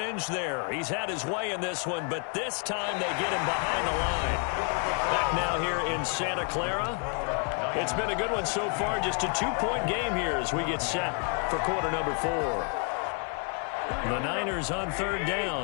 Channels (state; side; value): quieter; right; 38.6 dB